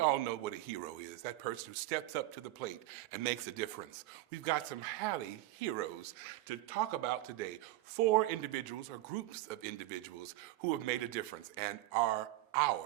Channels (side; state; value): left; quieter; 16.3 dB